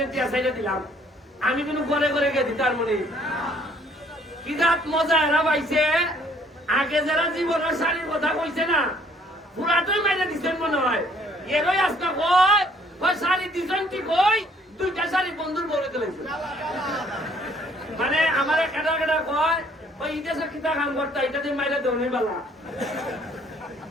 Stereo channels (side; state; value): both; normal; correlation 0.61